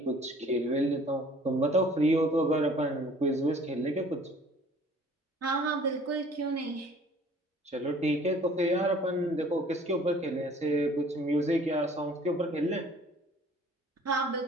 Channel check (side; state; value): both; normal; correlation 0.53